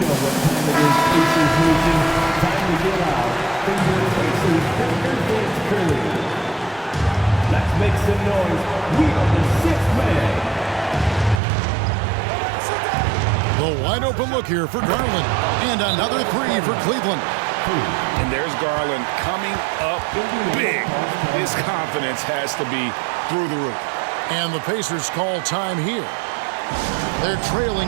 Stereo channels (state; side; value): drops out; left; at 11.4 s